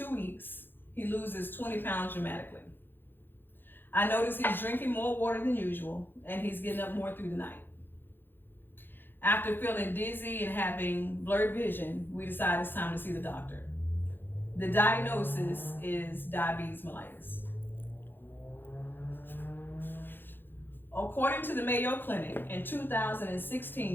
weeks, he loses 20 pounds dramatically. I notice he's drinking more water than usual and he's getting up more through the night. After feeling dizzy and having blurred vision, we decide it's time to see the doctor. The diagnosis is diabetes mellitus. According to the Mayo Clinic, in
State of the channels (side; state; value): right; late; 0.098 ms